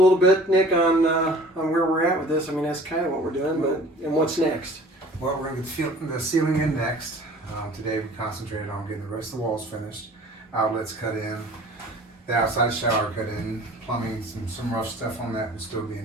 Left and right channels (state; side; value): normal; both; correlation 0.48